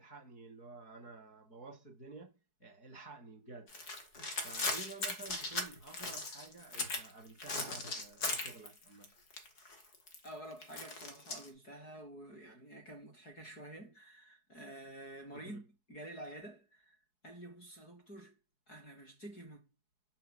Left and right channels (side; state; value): right; late; 4.7 ms